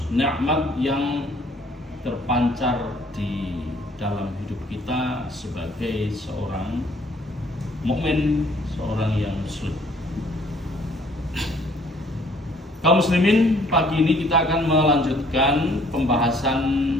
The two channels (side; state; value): both; normal; correlation 0.60